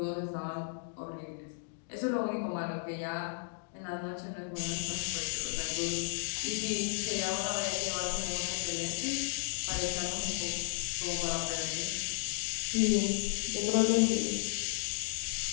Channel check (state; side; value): silent; right; digital silence